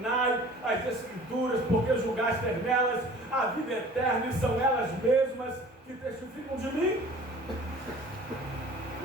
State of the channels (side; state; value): both; normal; correlation 0.47